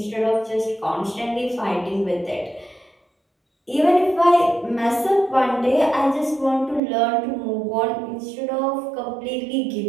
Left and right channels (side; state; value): left; drops out; at 6.8 s